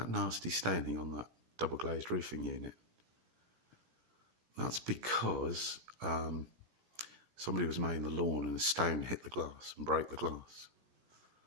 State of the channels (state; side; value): late; left; 17 ms